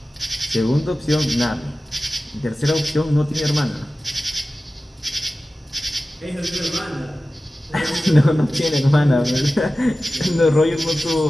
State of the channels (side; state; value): both; normal; correlation 0.95